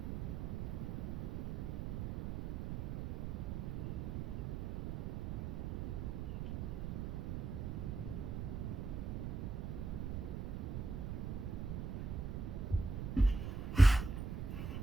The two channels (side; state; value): right; noise; rumble, 3 dB below the sound